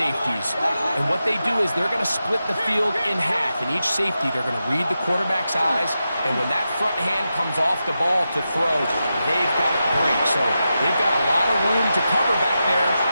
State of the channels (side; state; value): both; inverted; correlation -0.89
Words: And what they do is they're going to split the field in half. In each safety, they're going to read the quarterback's eyes. And when that front hand comes off the ball to throw, they've got to break. So they've got a lot of room to cover back there.